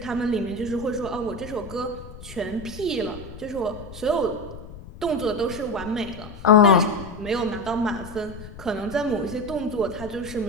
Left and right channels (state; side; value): noise; left; rumble, 15 dB below the sound